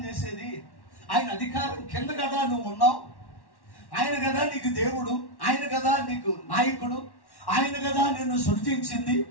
చేసేది, ఆయన అధికారం కింద కదా నువ్వు ఉన్నావు, ఆయన కదా నీకు దేవుడు, ఆయన కదా నీకు నాయకుడు, ఆయన కదా నిన్ను సృష్టించింది.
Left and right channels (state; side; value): late; right; 1.1 ms